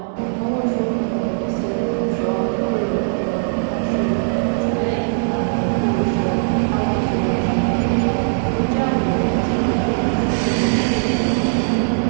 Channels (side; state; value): left; silent; digital silence